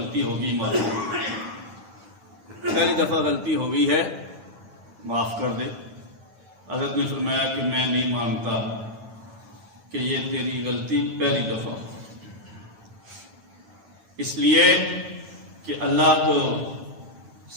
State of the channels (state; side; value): late; left; 9.0 ms